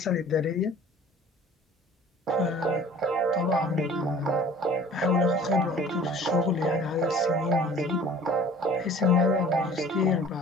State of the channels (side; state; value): both; normal; correlation 0.48